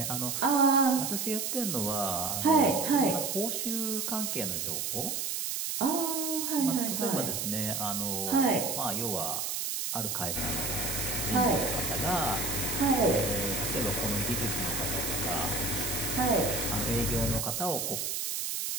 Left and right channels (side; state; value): right; noise; hiss, 2 dB below the sound